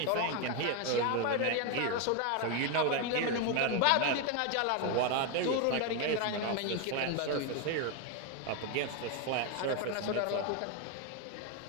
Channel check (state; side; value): different; both; correlation 0.01